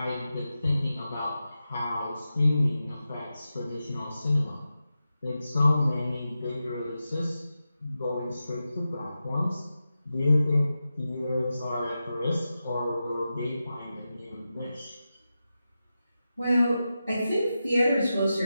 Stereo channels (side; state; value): both; inverted; correlation -0.91